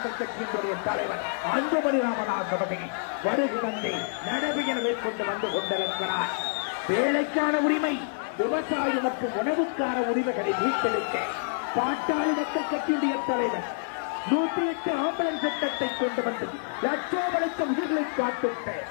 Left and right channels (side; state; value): right; silent; digital silence